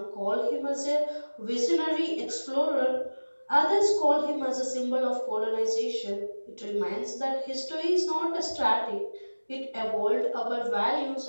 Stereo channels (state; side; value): inverted; both; correlation -1.00